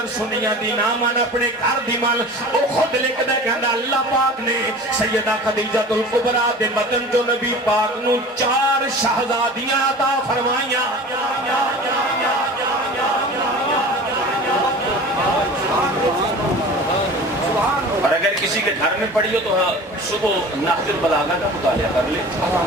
سنیا دی نامان اپنے گھر دی مال او خود لکھ دے کہندا اللہ پاک نے سیدہ خدیجہ الکبریٰ دے بدن جو نبی پاک نو 4 شہزادیاں عطا فرمائیاں. اور اگر کسی کے گھر میں پڑھی ہو تو صبح نحج البلاغہ کا مطالعہ کر لے,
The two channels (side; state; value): both; normal; correlation 0.39